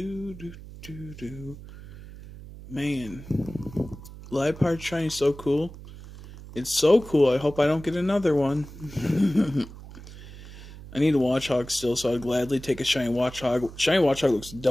Man, Liepard shiny is so cool. It's so cool. I hope I don't get another one. I need a Watchog still, so I'd gladly take a shiny Watchog. Shiny Watchog looks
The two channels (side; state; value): right; noise; hum, 15 dB below the sound